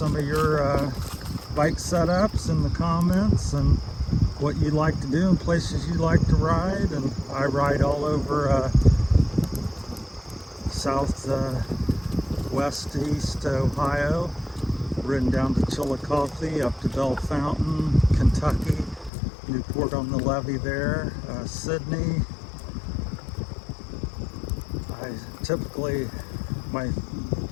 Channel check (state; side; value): drops out; right; at 19.1 s